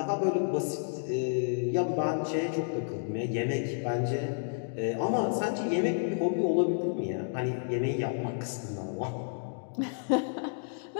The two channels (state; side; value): silent; right; digital silence